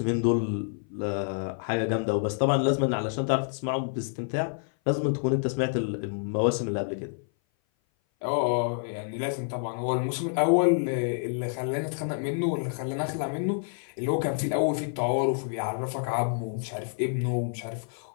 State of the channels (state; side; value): silent; right; 57 dB below the other